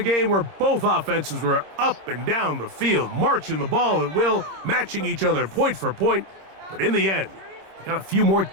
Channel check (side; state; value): left; late; 26 ms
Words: game where both offenses were up and down the field, marching the ball at will, matching each other point for point. But in the end, they got a few more